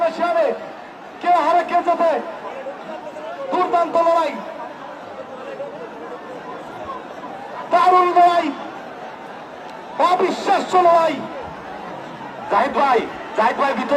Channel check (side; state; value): both; identical; correlation 1.00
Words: শেয়ারে, কে হারে কে যেতে। দুর্দান্ত লড়াই, দারুণ লড়াই, অবিশ্বাস্য লড়াই। জাহিদ ভাই